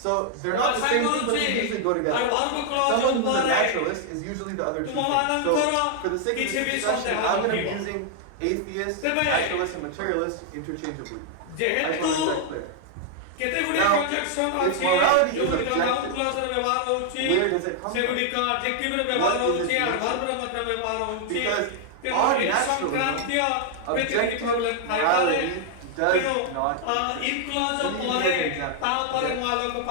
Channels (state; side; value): different; both; correlation 0.00